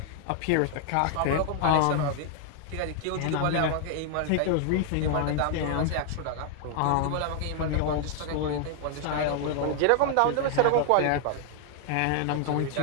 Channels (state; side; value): different; both; correlation 0.00